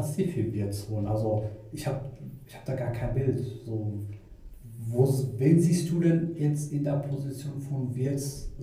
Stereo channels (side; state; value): both; identical; correlation 1.00